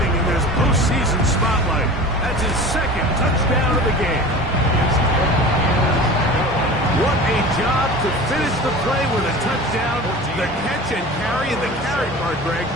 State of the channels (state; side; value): normal; both; correlation 0.36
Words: in this postseason spotlight. That's his 2nd touchdown of the game. What a job to finish the play with a touchdown. The catch and carry, and the carry part, Greg,